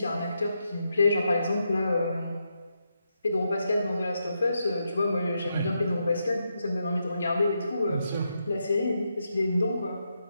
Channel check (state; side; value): inverted; both; correlation -0.83